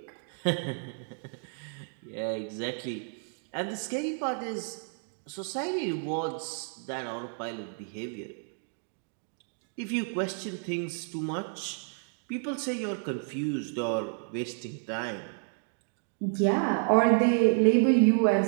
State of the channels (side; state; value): left; silent; 57 dB below the other